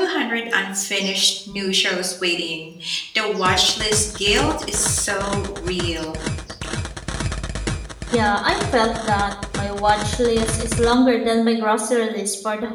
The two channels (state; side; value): identical; both; correlation 1.00